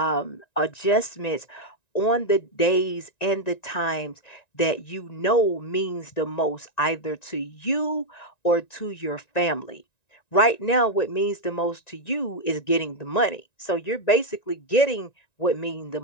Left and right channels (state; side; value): late; right; 1.9 ms